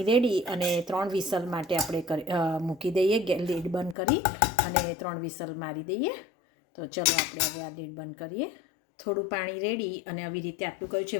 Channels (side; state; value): right; drops out; at 4.0 s